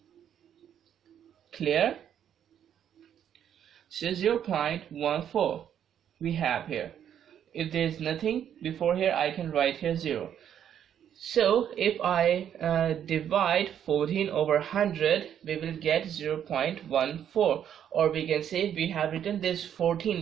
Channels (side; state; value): left; quieter; 9.5 dB